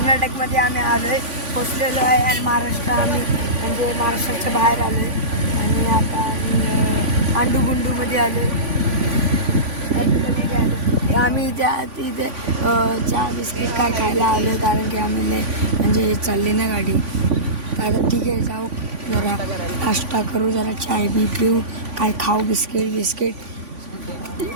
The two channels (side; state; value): left; late; 3.5 ms